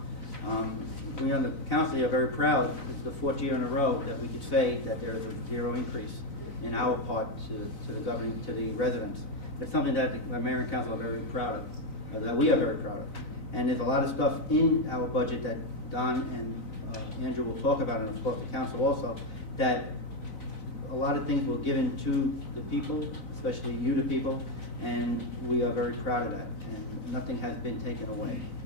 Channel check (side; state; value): right; late; 3.9 ms